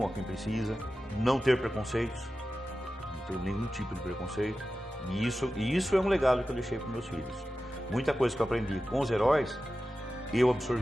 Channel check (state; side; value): normal; both; correlation 0.93